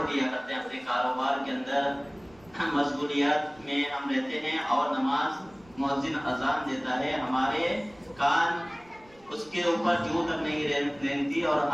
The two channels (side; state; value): right; noise; rumble, 27 dB below the sound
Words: دیا کرتے ہیں، اپنے کاروبار کے اندر مشغولیات میں ہم رہتے ہیں اور نماز مؤذن اذان دیتا ہے، ہمارے کان اس کے اوپر جو تک نہیں رہتی اور